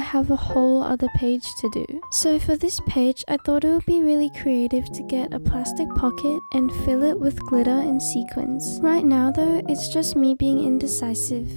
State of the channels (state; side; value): inverted; both; correlation -1.00